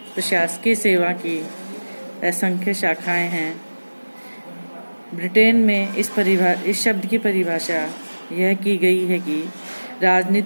प्रशासकीय सेवा की असंख्य शाखाएं हैं। ब्रिटेन में इस शब्द की परिभाषा यह की गई है कि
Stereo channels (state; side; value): inverted; both; correlation -1.00